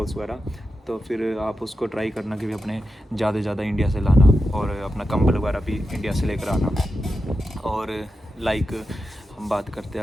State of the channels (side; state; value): both; normal; correlation 0.89